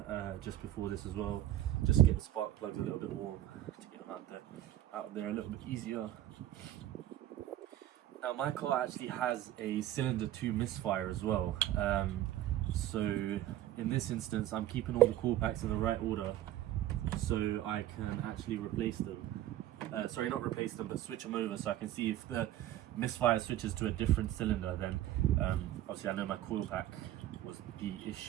just before this as well, just to get the spark plugs a little bit warm, to get them out there a little bit easier. Now my car actually has a cylinder 2 misfire as well, so in this instance I'm keeping all the coil packs in the right order so I can actually replace them. Sorry, not replace them, but switch them over so I can see if the misfire switches to a different cylinder, then obviously I know my coil pack was the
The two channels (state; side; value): quieter; left; 13.3 dB